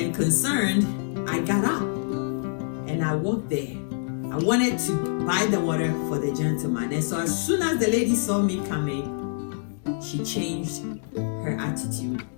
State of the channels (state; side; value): silent; right; 61 dB below the other